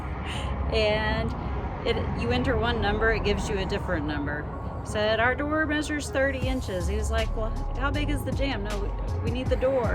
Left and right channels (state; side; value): identical; both; correlation 1.00